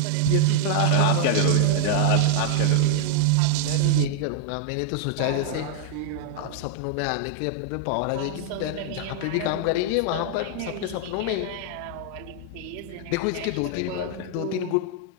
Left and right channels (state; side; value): different; both; correlation -0.01